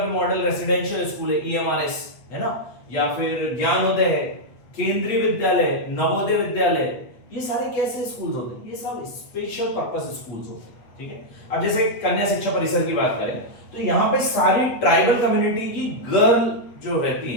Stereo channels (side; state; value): right; late; 8.3 ms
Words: मॉडल रेसिडेंशियल स्कूल है, ईएमआरएस है ना, या फिर ज्ञानोदय है, केंद्रीय विद्यालय, नवोदय विद्यालय, ये सारे कैसे स्कूल्स होते हैं, ये सब स्पेशल पर्पस स्कूल्स होते हैं। ठीक है, अब जैसे कन्या शिक्षा परिसर की बात करें तो यहाँ पे सारी ट्राइबल कम्युनिटी की गर्ल जो रहती